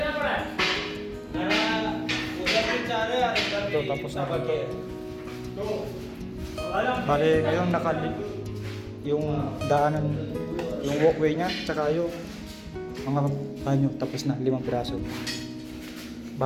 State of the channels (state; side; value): identical; both; correlation 1.00